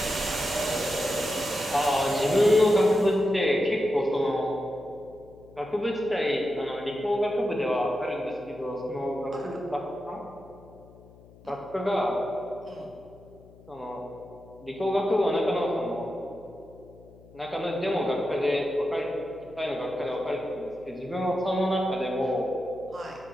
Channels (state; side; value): noise; left; hum, 23 dB below the sound